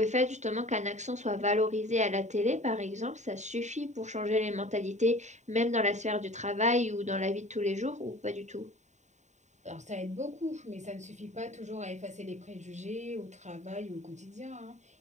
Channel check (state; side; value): late; left; 0.34 ms